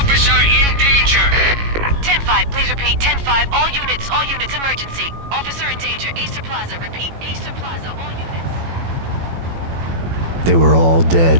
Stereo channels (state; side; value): late; left; 18 ms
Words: in danger. 10-5, please repeat. 10-5, all units, emergency. Officer in danger, Acer Plaza. Repeat, Acer Plaza, all units. They were all